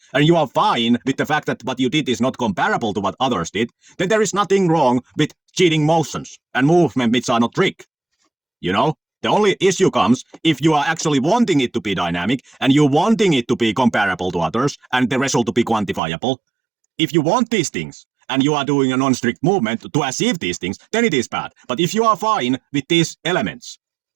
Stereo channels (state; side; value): drops out; left; at 16.0 s